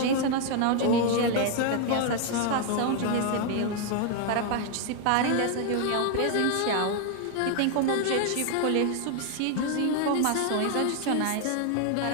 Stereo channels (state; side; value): different; both; correlation 0.01